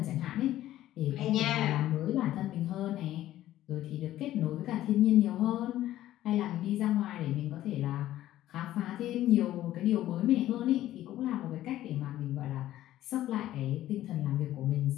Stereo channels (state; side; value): quieter; right; 13.8 dB